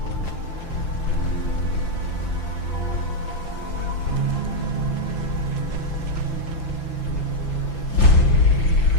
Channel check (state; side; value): late; right; 5.9 ms